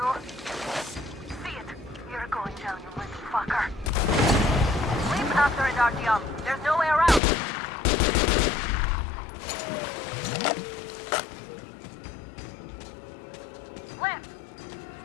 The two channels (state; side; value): drops out; right; at 7.2 s